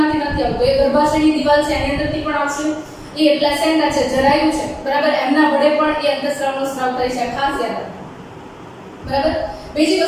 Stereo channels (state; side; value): identical; both; correlation 1.00